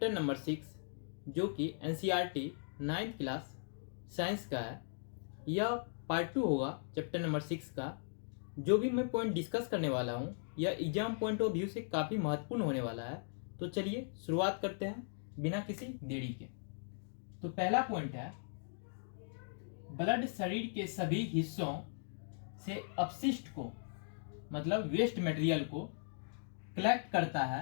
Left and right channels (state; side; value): silent; right; digital silence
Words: नंबर 6, जो कि एनसीईआरटी 9th क्लास साइंस का है। यह पार्ट 2 होगा चैप्टर नंबर 6 का। जो भी मैं पॉइंट डिस्कस करने वाला हूँ यह एग्जाम पॉइंट ऑफ व्यू से काफ़ी महत्वपूर्ण होने वाला है। तो चलिए शुरुआत करते हैं बिना किसी देरी के। तो पहला पॉइंट है, ब्लड शरीर के सभी हिस्सों से अपशिष्ट को मतलब वेस्ट मटेरियल को कलेक्ट करता